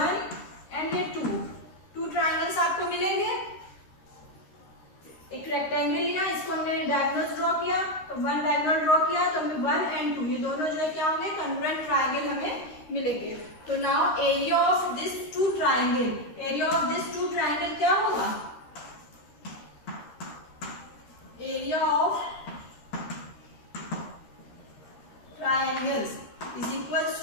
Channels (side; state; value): right; late; 13 ms